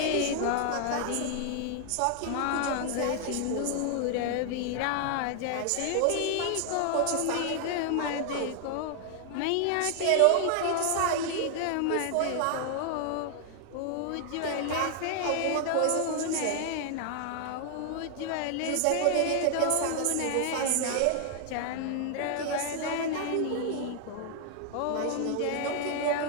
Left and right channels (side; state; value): both; different; correlation 0.00